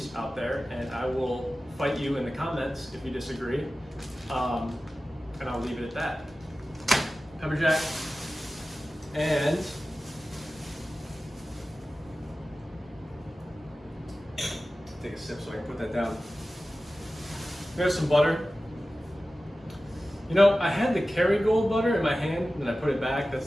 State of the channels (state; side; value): normal; both; correlation 0.95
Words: out there, and I will fight you in the comments if you disagree. And I'll leave it at that. Pepper jack. And take a sip so I can put that down. There's some butter. You know, I had the Kerrygold butter in my hand, and I put it back. That's